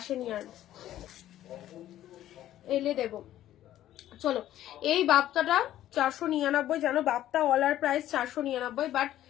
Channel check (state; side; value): quieter; right; 12.9 dB